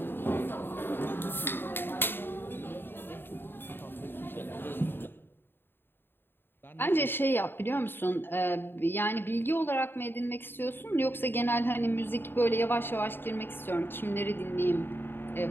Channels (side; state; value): right; late; 0.10 ms